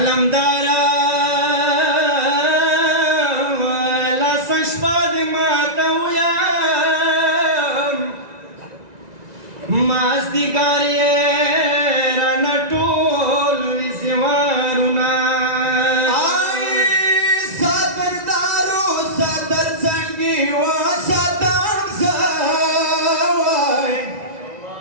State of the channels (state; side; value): late; left; 1.9 ms